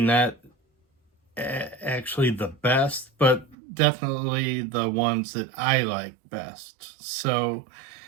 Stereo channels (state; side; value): drops out; left; at 3.6 s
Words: actually the best, but definitely the ones that I like best. So